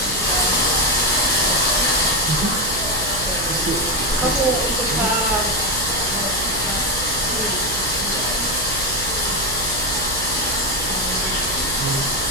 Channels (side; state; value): right; noise; hum, 11 dB below the sound